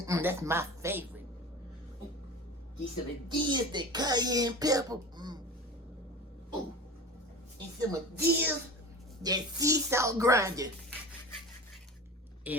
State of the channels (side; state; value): both; normal; correlation 0.33